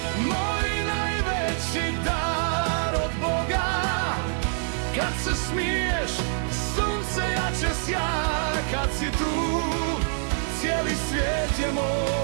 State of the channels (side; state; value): left; silent; digital silence